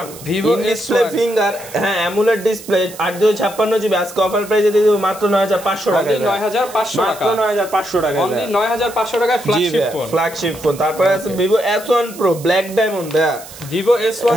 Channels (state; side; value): noise; right; hiss, 17 dB below the sound